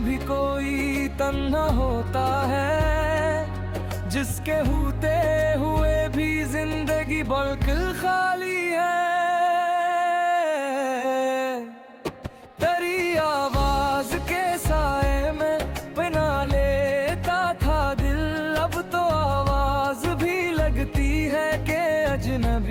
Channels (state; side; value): identical; both; correlation 1.00